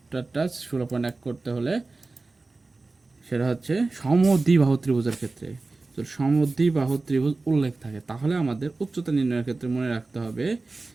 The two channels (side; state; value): left; quieter; 3.5 dB